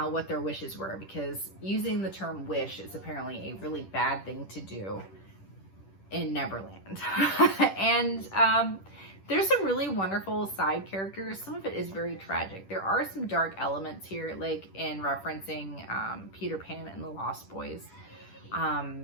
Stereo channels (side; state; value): right; late; 10 ms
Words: what their wishes were, because using the term wish is apparently a really bad thing to do in Neverland. And there's some really wonderful side characters. Some of it is very tragic. There are some dark elements here, like in referencing Peter Pan and the Lost Boys.